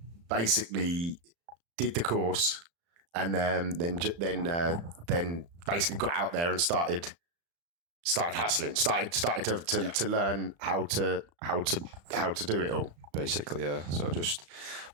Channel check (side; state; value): left; late; 35 ms